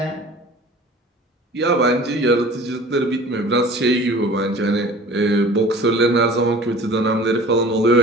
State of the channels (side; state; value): both; normal; correlation 0.44